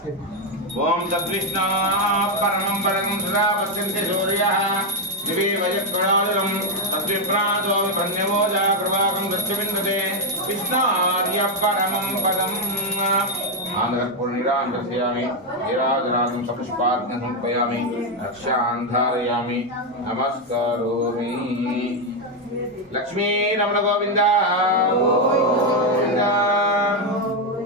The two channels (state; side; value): normal; both; correlation 0.04